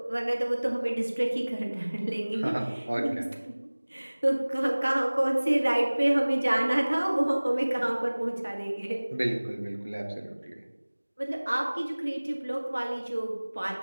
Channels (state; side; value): inverted; both; correlation -1.00